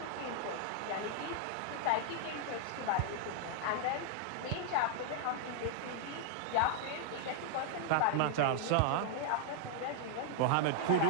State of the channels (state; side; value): different; both; correlation 0.00